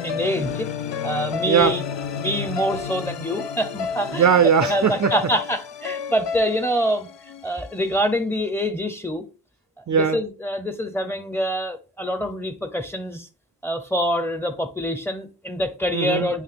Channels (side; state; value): both; normal; correlation 0.33